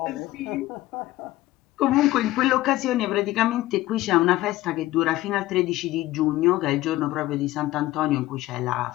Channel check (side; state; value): right; quieter; 16.7 dB